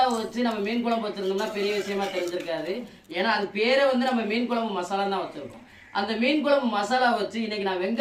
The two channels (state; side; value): identical; both; correlation 1.00